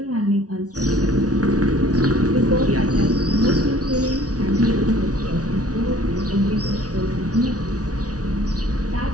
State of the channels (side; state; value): left; late; 0.68 ms